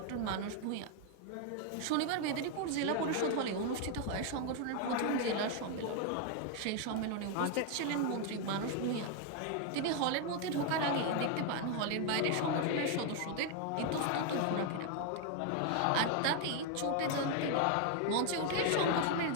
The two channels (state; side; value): different; both; correlation 0.01